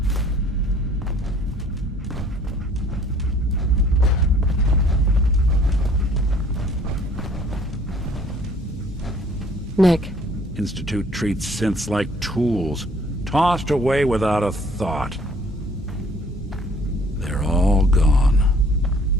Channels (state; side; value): normal; both; correlation 0.57